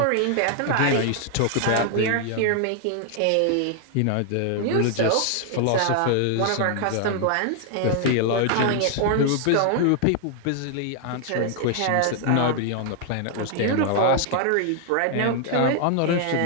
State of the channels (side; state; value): both; different; correlation 0.00